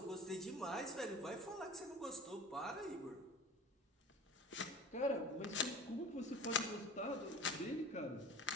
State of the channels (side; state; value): both; normal; correlation 0.38